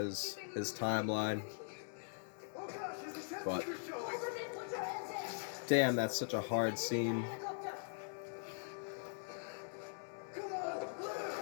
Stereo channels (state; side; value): silent; right; digital silence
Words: timeline. But damn, that's such a hard scene.